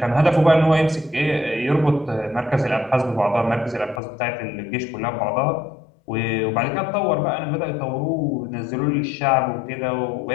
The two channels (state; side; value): drops out; right; at 4.0 s